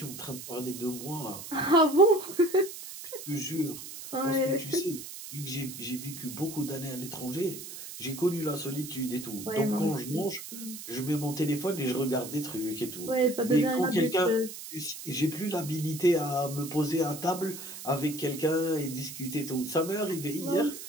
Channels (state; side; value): noise; right; hiss, 11 dB below the sound